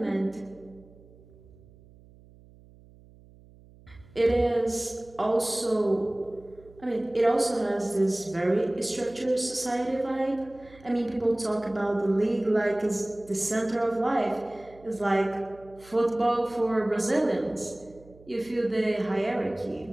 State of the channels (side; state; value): right; noise; hum, 24 dB below the sound